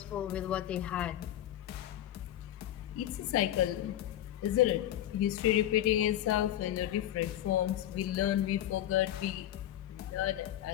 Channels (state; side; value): quieter; right; 12.5 dB